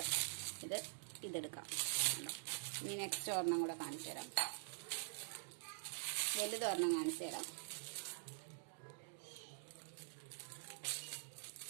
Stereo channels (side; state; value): left; silent; digital silence